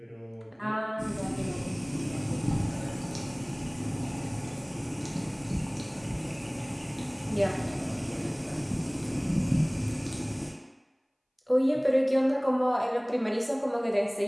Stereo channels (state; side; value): identical; both; correlation 1.00